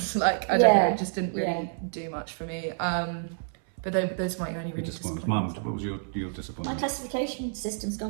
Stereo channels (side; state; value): left; silent; 59 dB below the other